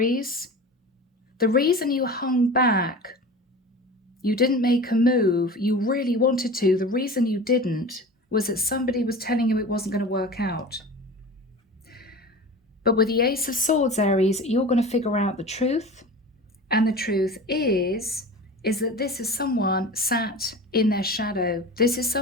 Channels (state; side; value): normal; both; correlation 0.35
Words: The reason you hung back, you didn't make a move, you really wanted to, the reason you didn't was that somebody was telling you it wasn't going to work out. But with the Ace of Swords, Aries, you're going to figure out the truth. And the truth is that this is someone sat in their shadow. This is